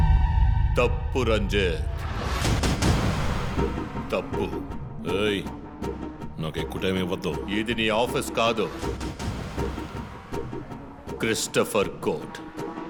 తప్పు రంజిత్, తప్పు. ఏయ్, నాకు ఎక్కువ టైం ఇవ్వద్దు. ఇది నీ ఆఫీస్ కాదు, క్రిస్టఫర్ కోర్ట్.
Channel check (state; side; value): identical; both; correlation 1.00